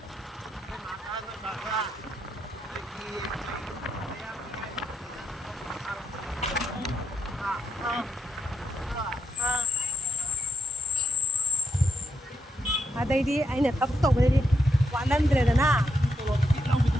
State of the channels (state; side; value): normal; both; correlation 0.81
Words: Adai ai na tap to bari walan dre na